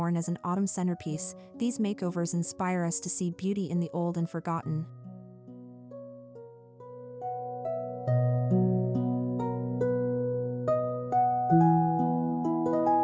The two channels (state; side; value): identical; both; correlation 1.00